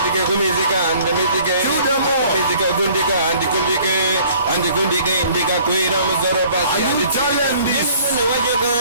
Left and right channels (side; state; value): both; inverted; correlation -0.54